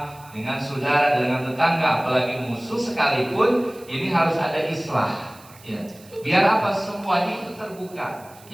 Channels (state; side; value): noise; right; hiss, 24 dB below the sound